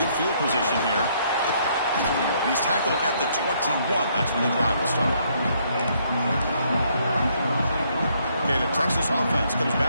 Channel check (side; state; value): both; inverted; correlation -0.69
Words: field position here. And he's tackled at the 21. That's when the drive will start. Okay, the Texas offense comes